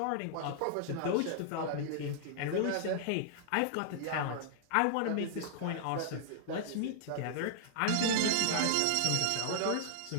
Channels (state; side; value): different; both; correlation -0.01